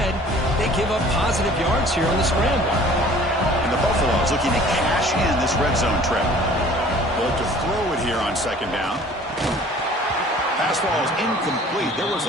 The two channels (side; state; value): both; normal; correlation 0.50